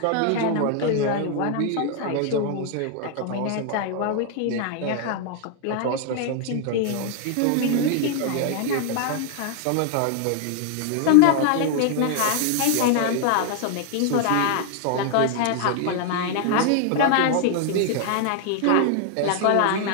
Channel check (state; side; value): different; both; correlation 0.00